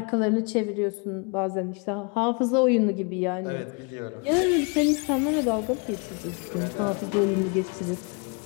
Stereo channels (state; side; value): quieter; right; 33.9 dB